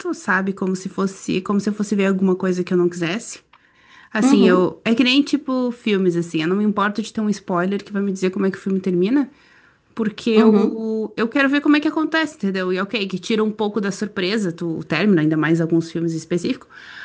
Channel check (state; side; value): identical; both; correlation 1.00